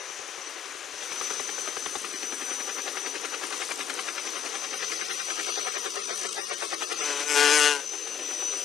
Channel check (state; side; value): quieter; right; 8.3 dB